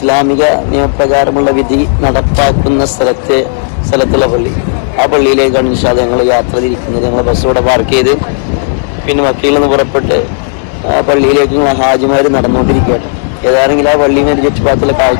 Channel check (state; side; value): silent; right; digital silence